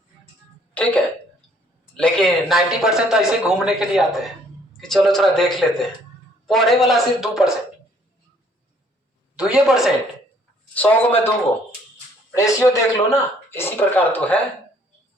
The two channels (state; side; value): normal; both; correlation 0.62